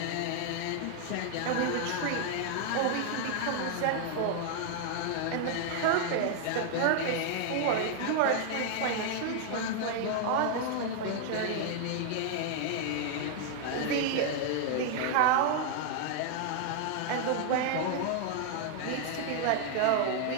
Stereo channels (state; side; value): different; both; correlation 0.00